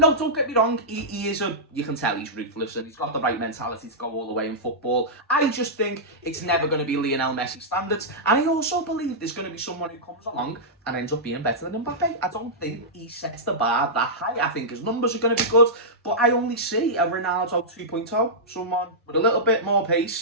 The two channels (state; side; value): normal; both; correlation -0.12